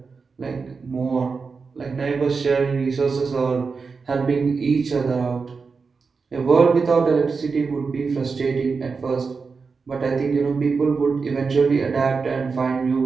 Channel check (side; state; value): left; quieter; 4.9 dB